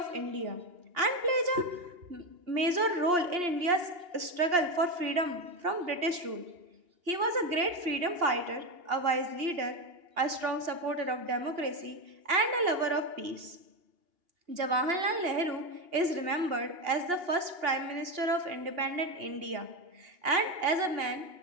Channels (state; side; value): late; left; 2.8 ms